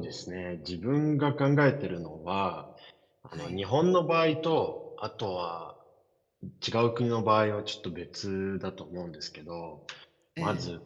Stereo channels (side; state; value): both; identical; correlation 1.00